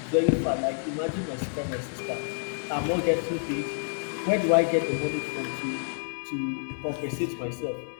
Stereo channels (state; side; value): silent; right; digital silence